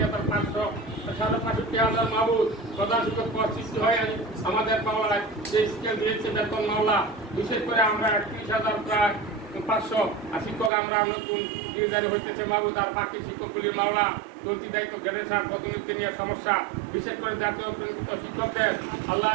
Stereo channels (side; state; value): left; drops out; at 10.7 s